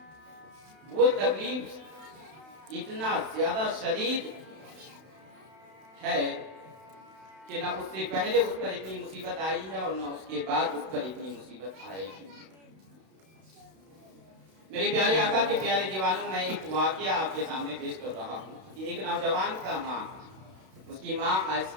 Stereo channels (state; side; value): late; left; 31 ms